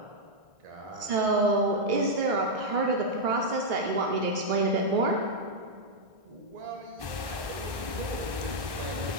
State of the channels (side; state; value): left; late; 1.1 ms